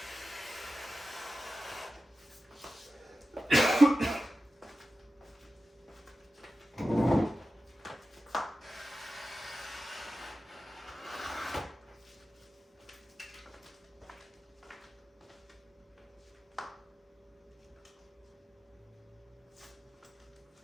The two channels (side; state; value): both; normal; correlation 0.93